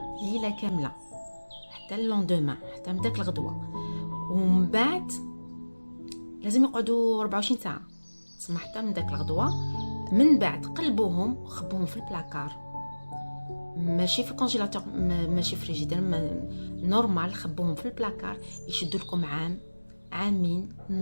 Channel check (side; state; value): both; inverted; correlation -1.00